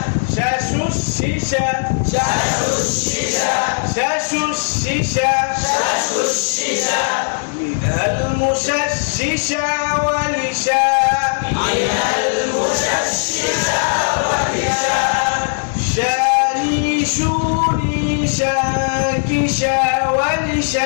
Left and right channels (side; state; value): right; silent; 67 dB below the other